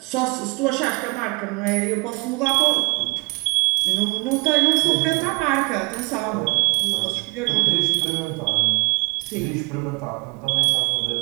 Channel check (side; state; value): left; quieter; 28.5 dB